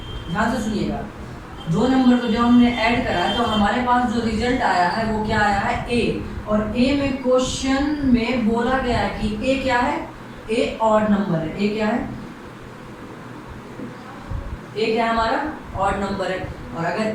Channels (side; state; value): both; identical; correlation 1.00